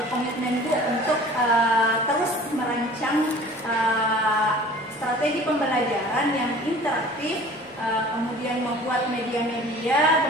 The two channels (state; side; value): normal; both; correlation 0.46